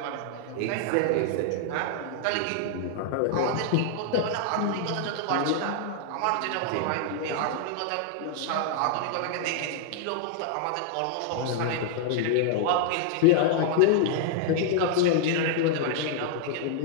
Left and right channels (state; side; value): different; both; correlation -0.01